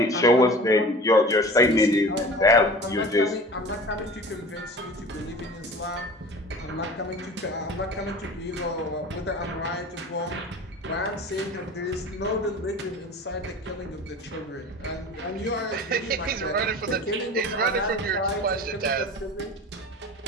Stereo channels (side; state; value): both; normal; correlation 0.39